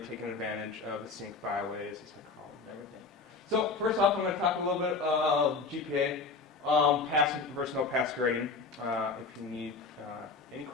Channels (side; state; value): right; quieter; 4.3 dB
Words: advantage of the scenic byways, as I call them, and everything. So first off, I'm going to talk a little bit of GPA, pass versus no pass grading. If you need any